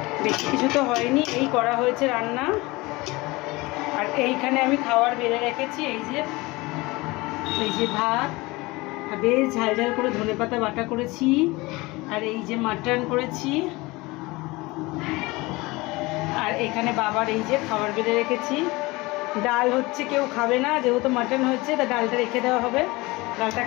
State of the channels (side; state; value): right; quieter; 22.4 dB